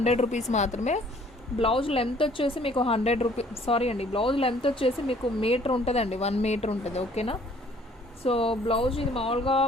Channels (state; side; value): normal; both; correlation 0.58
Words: రూపీస్ మాత్రమే. బ్లౌజ్ లెంత్ వచ్చేసి మీకు 100 రూపీస్, సారీ అండి, బ్లౌజ్ లెంత్ వచ్చేసి మీకు మీటర్ ఉంటుందండి, 1 మీటర్ ఉంటుంది. ఓకేనా. సో బ్లౌజ్ ఇది మామూలుగా